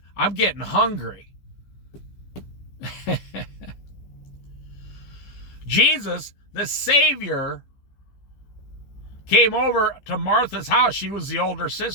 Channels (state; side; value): late; right; 15 ms